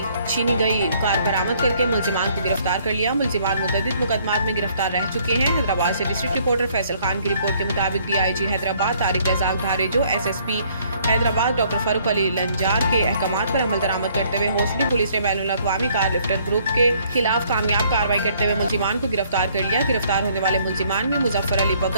छीनी गई कार बरामद करके मुलजिमान को गिरफ्तार कर लिया। मुलजिमान मुतअद्दिद मुकदमात में गिरफ्तार रह चुके हैं। हैदराबाद से डिस्ट्रिक्ट रिपोर्टर फैसल खान की रिपोर्ट के मुताबिक DIG Hyderabad Tariq Razzaq धारेजो SSP Hyderabad doctor Farooq Ali Lanjar के अहकामात पर अमल दरामद करते हुए होसड़ी पुलिस ने बैनुल अक़वामी कार लिफ्टर ग्रुप के खिलाफ कामयाब कार्रवाई करते हुए मुलजिमान को गिरफ्तार कर लिया। गिरफ्तार होने वाले मुलजिमान में मुजफ्फर अली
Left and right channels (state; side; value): inverted; both; correlation -0.64